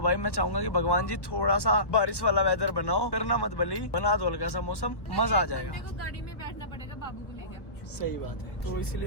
मैं चाहूंगा कि भगवान जी थोड़ा सा बारिश वाला वेदर बनाओ, करना मत भली, बना दो हल्का सा मौसम, मजा आ जाएगा। गाड़ी में बैठना पड़ेगा बाबू को लेकर। सही बात है, तो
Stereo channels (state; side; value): late; right; 1.1 ms